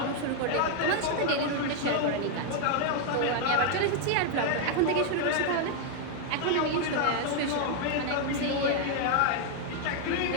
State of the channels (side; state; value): both; different; correlation 0.00